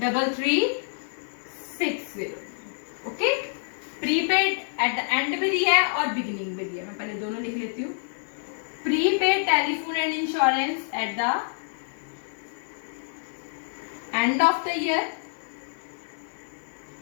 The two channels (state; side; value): silent; right; digital silence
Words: okay. Prepaid eight the and भी दिया है और बिगिनिंग भी दिया है, मैं पहले दोनों लिख लेती हूँ। Prepaid telephone and insurance eight the end of the year,